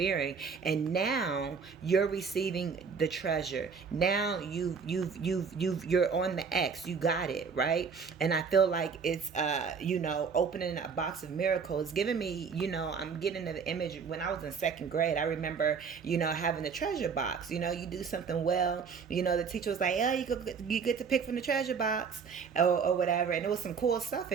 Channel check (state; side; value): quieter; left; 5.8 dB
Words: and now you're receiving the treasure. Now you're on the X. You got it, right? And I feel like it's opening a box of miracles, giving me, I'm getting the image when I was in second grade. I remember, having the treasure box. You do something well, the teacher was like, oh, you get to pick from the treasure box, or whatever, and there was some cool stuff